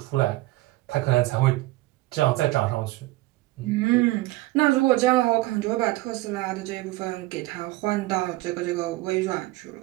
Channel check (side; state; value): left; quieter; 19.2 dB